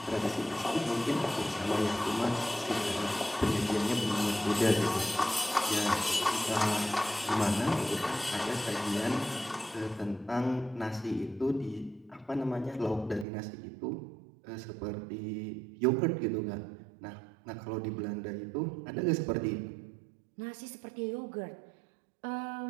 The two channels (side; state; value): left; drops out; at 13.2 s